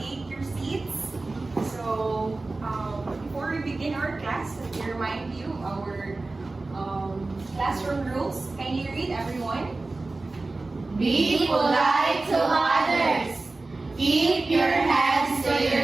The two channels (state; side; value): quieter; left; 3.3 dB